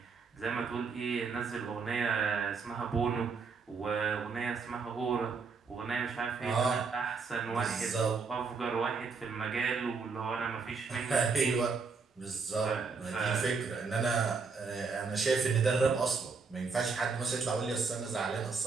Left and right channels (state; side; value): quieter; left; 4.9 dB